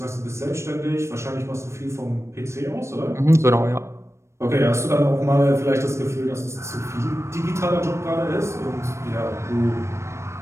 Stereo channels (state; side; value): late; left; 0.13 ms